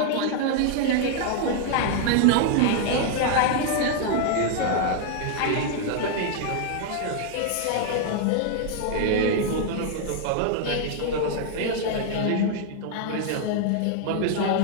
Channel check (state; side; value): different; both; correlation 0.00